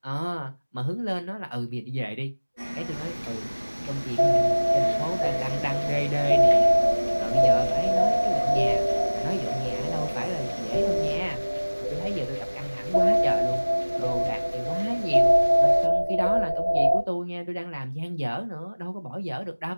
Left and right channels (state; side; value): inverted; both; correlation -1.00